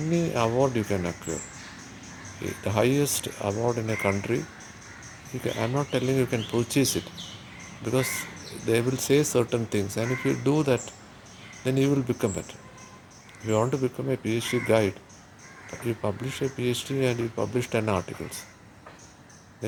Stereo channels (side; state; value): both; identical; correlation 1.00